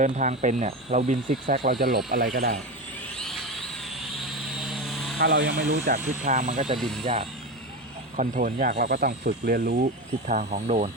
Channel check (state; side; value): normal; both; correlation 0.20